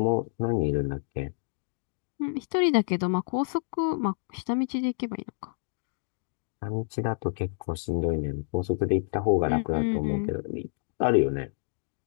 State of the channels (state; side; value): silent; right; digital silence